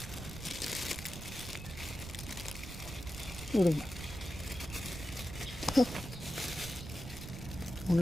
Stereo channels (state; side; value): noise; right; rumble, 10 dB below the sound